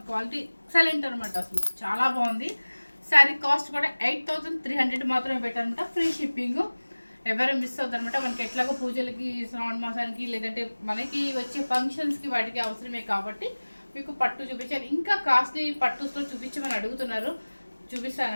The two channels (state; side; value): inverted; both; correlation -1.00